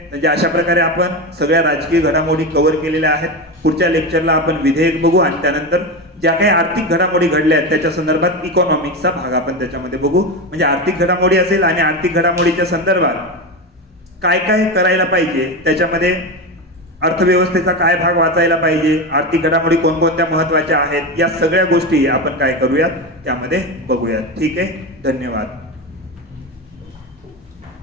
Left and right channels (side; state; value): both; normal; correlation 0.18